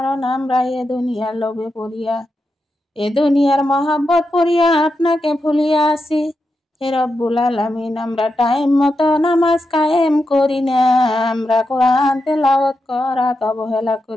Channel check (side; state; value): both; normal; correlation 0.87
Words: আমরা এ দুনিয়ার লোভে পড়িয়া, এ দুনিয়ার মহাব্বত পড়িয়া আপনাকে ভুলিয়া আছি। হে রব্বুল আলামিন, আমরা টাইম মতো নামাজ কায়েম করি না, আমরা কোরআন তেলাওয়াত করাত অবহেলা